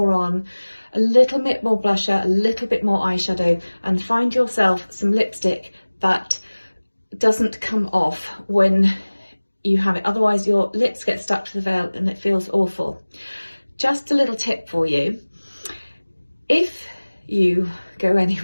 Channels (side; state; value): both; inverted; correlation -1.00